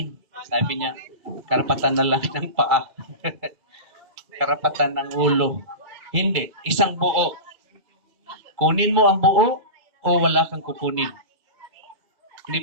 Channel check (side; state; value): left; late; 2.3 ms